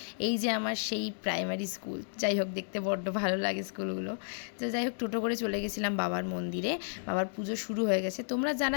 এই যে আমার সেই প্রাইমারি স্কুল, যাই হোক দেখতে বড্ড ভালো লাগে স্কুলগুলো। তো যাই হোক টোটো করে চলে গেছিলাম বাবার মন্দিরে। বাবার পুজো শুরু হয়ে গেছে। তোমরা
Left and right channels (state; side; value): silent; right; digital silence